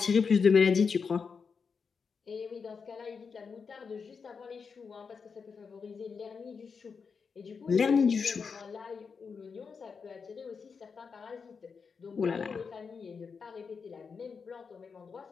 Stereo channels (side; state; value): right; quieter; 5.6 dB